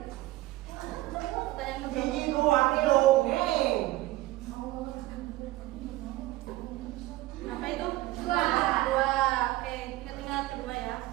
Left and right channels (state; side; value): quieter; left; 17.7 dB